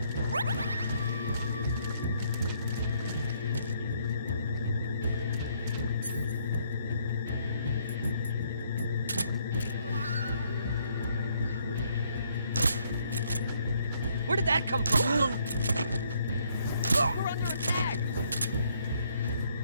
Where did that come from? We're under attack!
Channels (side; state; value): both; inverted; correlation -0.68